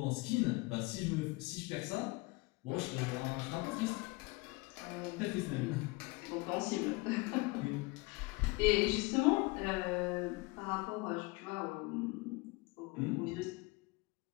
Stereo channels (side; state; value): right; quieter; 24.7 dB